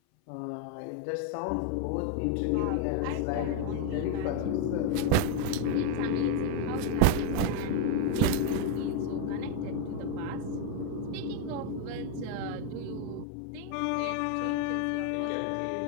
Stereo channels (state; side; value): different; both; correlation 0.01